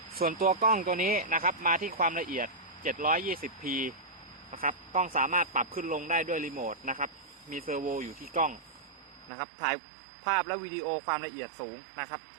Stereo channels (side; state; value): left; drops out; at 9.3 s